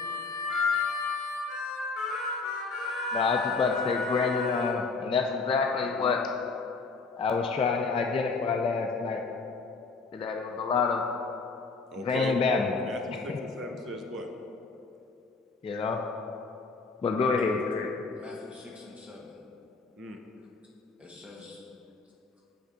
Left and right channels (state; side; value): quieter; right; 4.2 dB